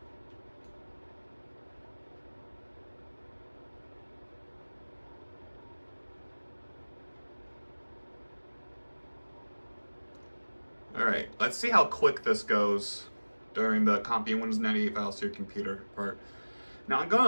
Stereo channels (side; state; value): both; inverted; correlation -1.00